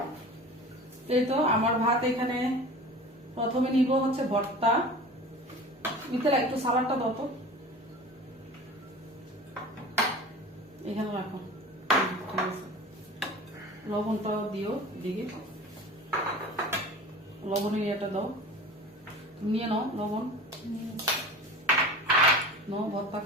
এই তো আমার ভাত এখানে, প্রথমে নিব হচ্ছে ভর্তা। মিথিলা একটু সালাডটা দাও তো, এখানে রাখো, ঠিক আছে। লবণটাও দিও দিকে, লবণের ইয়েটা দাও, নিয়ে নাও লবণ, নাও ভর্তা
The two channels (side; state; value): both; normal; correlation 0.37